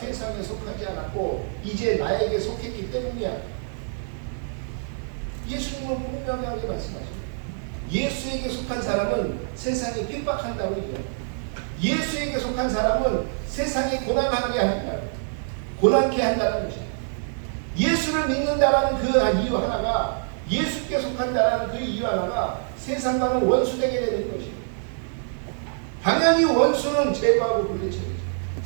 속하지 않았고 이제 나에게 속했기 때문이야. 예수님은 분명하게 말씀하십니다. 예수에게 속한 사람은 세상이 핍박한다고 얘기해요. 예수에게 속한 사람은 세상이 고난하게 한다. 고난케 한다는 것이에요. 예수를 믿는다라는 그 이유 하나가 예수께 속한다라는 그 이유 하나가 세상과는 원수되게 되는 것이에요. 당연히 원수는 제거하고 물리쳐야죠.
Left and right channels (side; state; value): left; silent; 59 dB below the other